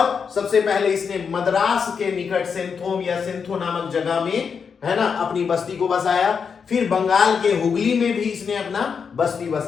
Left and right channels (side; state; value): right; quieter; 6.2 dB